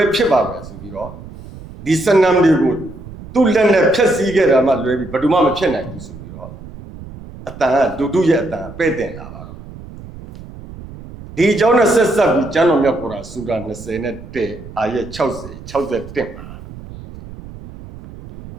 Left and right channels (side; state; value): right; noise; rumble, 15 dB below the sound